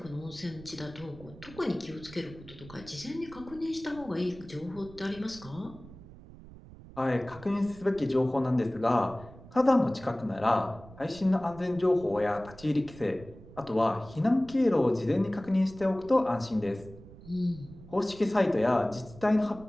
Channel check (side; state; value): right; noise; rumble, 18 dB below the sound